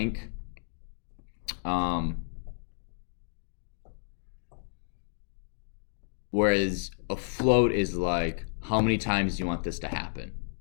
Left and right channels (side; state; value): right; silent; digital silence